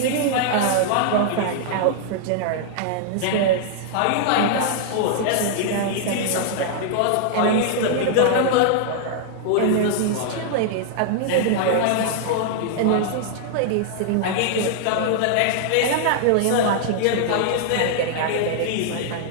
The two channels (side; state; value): both; different; correlation -0.01